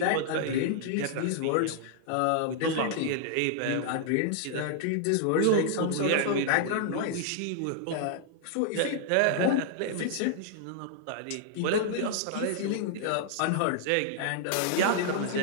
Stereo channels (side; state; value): both; different; correlation -0.01